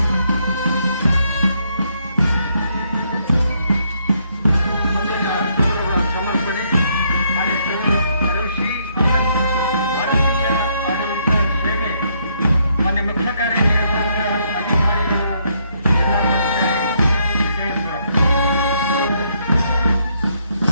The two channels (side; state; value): both; inverted; correlation -0.73